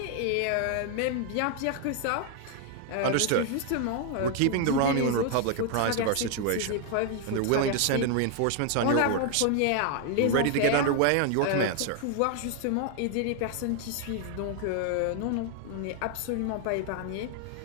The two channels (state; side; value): different; both; correlation 0.00